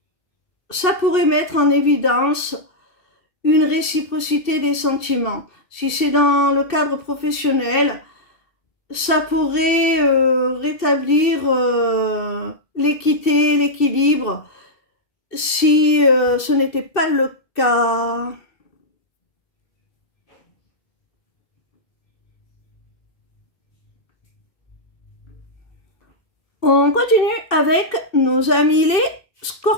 ça pourrait mettre en évidence une réciprocité des sentiments. Si c'est dans le cadre professionnel, ça pourrait rétablir l'équité, l'équilibre, si ce n'était pas le cas. On continue avec nos amis les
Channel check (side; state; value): right; late; 2.7 ms